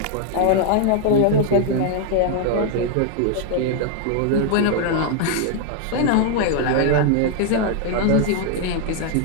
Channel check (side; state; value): both; different; correlation 0.00